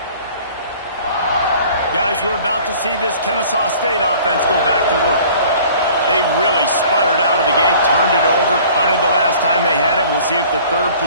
Guys, we're about to see this Kenn State offense go back to work. They really sputtered out of the gate, turned it over, punted the last time they had it. We'll see if the 3rd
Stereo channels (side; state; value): both; inverted; correlation -0.50